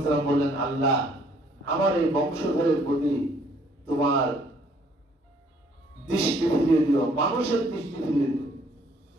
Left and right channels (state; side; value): normal; both; correlation 0.63